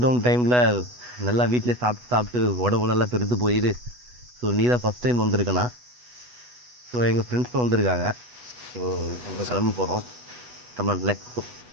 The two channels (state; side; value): late; left; 8.1 ms